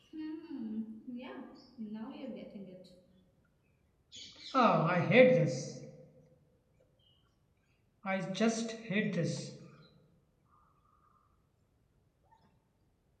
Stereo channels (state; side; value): identical; both; correlation 1.00